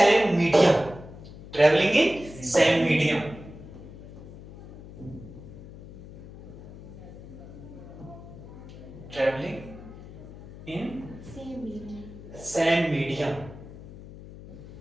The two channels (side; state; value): left; noise; hum, 15 dB below the sound